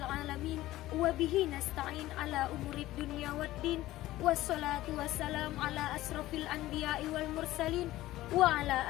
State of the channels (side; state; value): right; quieter; 16.0 dB